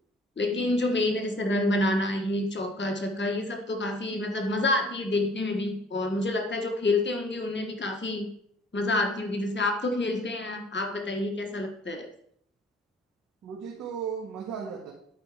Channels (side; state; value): both; normal; correlation 0.54